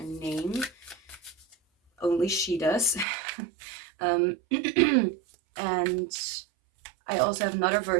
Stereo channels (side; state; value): left; drops out; at 3.1 s